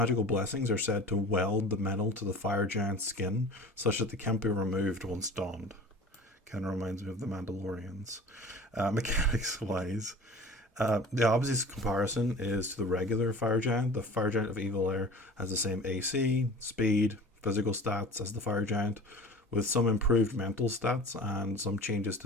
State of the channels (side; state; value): both; normal; correlation 0.41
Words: blessings are said to weld the metal to the Fire Giant's skin, such that they can't be removed once donned. Kind of reminds me of the Mandalorians. Mechanics-wise, the obvious comparison is to the regular Fire Giant. The Fire Giant of Evil Air has the same AC, speed, physical stats as the Fire Giant, with some improved mental stats and some changes